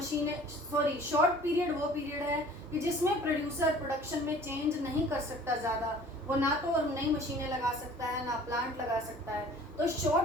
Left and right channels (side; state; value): both; normal; correlation 0.49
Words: सॉरी शॉर्ट पीरियड वो पीरियड है कि जिसमें प्रोड्यूसर प्रोडक्शन में चेंज नहीं कर सकता ज़्यादा, वो ना तो नई मशीनें लगा सकता है ना प्लांट लगा सकता है, तो